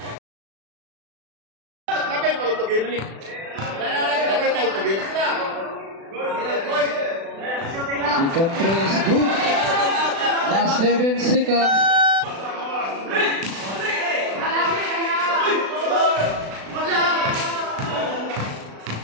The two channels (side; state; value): left; late; 36 ms